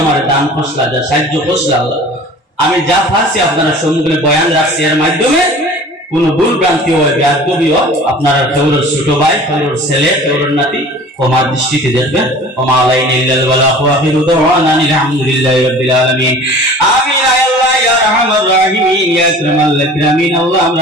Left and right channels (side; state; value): both; normal; correlation 0.43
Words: আমার দান ফসলা যা সাহায্য ফসলা আল্লাহ আমি যা পারছি আপনারা সম্মুখে বয়ান রাখছি এর মাধ্যমে কোন ভুল ভ্রান্তি হয় বেয়াদবি হয় আপনারা কেউর ছোট ভাই কেউর ছেলে কেউর নাতি ক্ষমা দৃষ্টিতে দেখবেন। ওমা আলাইনা ইল্লাল বালাগু ওয়া আখিরু দাওয়ানা আলহামদুলিল্লাহি রাব্বিল আলামিন। আমিন। আল্লাহ ইয়া রাহমার রাহিমিন ইয়া আকরামাল আকরামিন। আল্লাহ আমরা